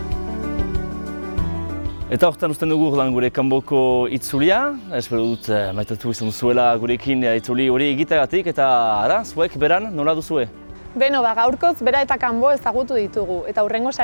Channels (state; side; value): inverted; both; correlation -1.00